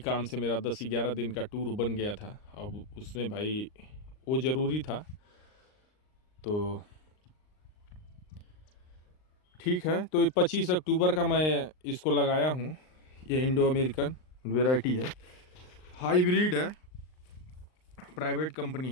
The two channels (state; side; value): late; right; 39 ms